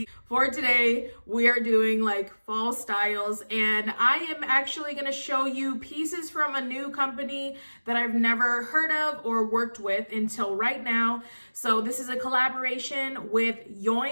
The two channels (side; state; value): both; inverted; correlation -1.00